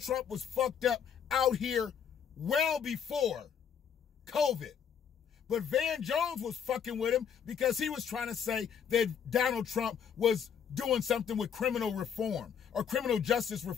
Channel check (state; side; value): quieter; right; 7.7 dB